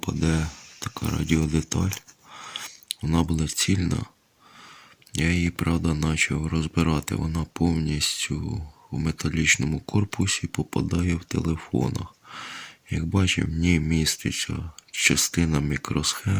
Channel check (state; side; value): identical; both; correlation 1.00